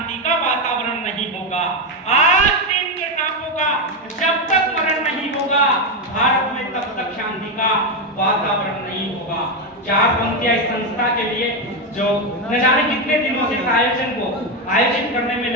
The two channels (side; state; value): both; normal; correlation 0.09